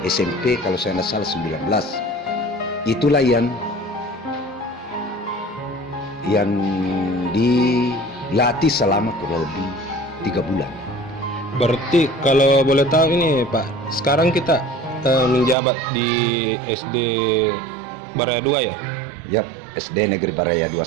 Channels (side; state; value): left; drops out; at 15.6 s